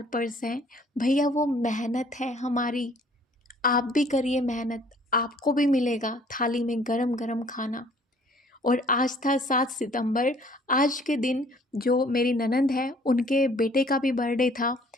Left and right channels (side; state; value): both; normal; correlation 0.57